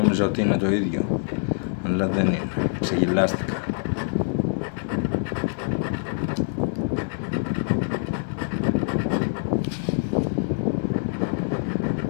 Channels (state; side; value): silent; right; digital silence